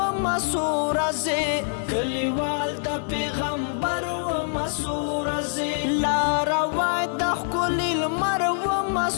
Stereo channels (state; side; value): silent; right; 56 dB below the other